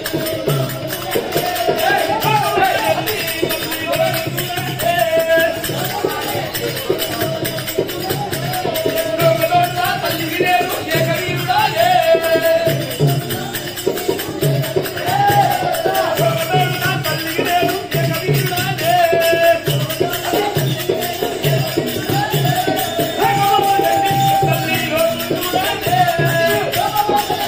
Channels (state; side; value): identical; both; correlation 1.00